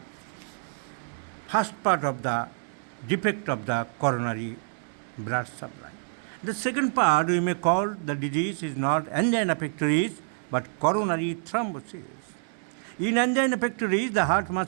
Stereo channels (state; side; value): silent; left; 60 dB below the other